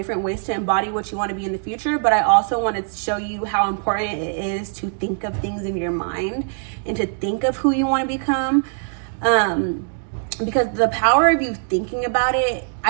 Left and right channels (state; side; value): silent; left; digital silence